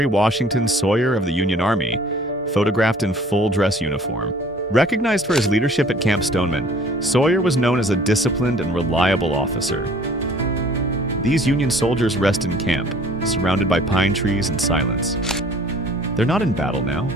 Washington Sawyer of the Union Army, photographed in full dress uniform. Recognized for his leadership at Camp Stoneman, Sawyer was known as a disciplined and reliable officer. These Union soldiers rest in camp, surrounded by pine trees and silence. They're not in battle now,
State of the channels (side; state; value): both; normal; correlation 0.52